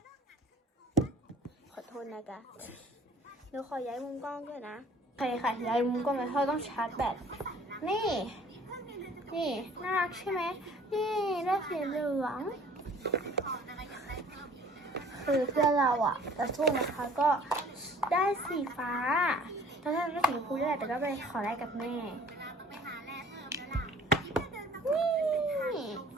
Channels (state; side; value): normal; both; correlation 0.52